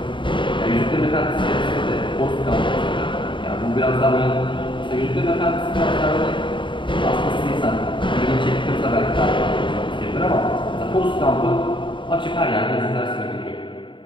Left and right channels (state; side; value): late; right; 0.24 ms